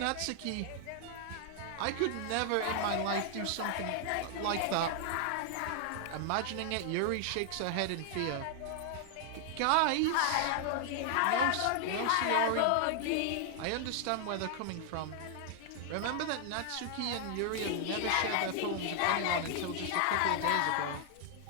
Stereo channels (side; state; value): both; different; correlation 0.00